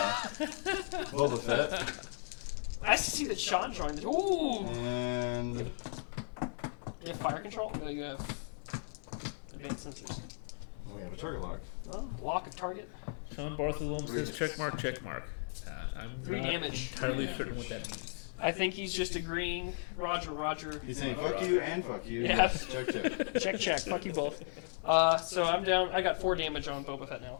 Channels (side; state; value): right; silent; digital silence